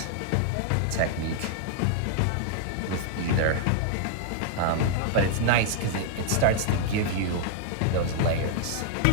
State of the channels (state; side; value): different; both; correlation -0.01